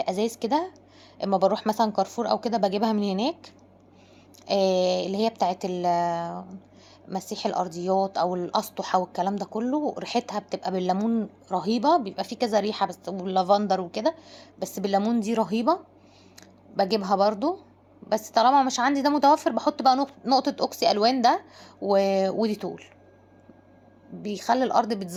كده. اما بروح مثلا كارفور او كده بجيبها من هناك. اللي هي بتاعت مسيح الارضيات او الاسطح والكلام ده كله، ريحتها بتبقى بالليمون رهيبه. بيبقى في كذا ريحه بس، واللافندر وكده، بس بالليمون دي رهيبه. بجيبها برضو. بس طالما مش عندي ده متوفر، بحط بقى نقطه اوكسي الوان ده وديتول، بيخلي الارض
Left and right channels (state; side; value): identical; both; correlation 1.00